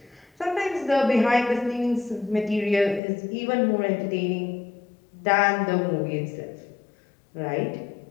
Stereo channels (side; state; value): right; drops out; at 3.0 s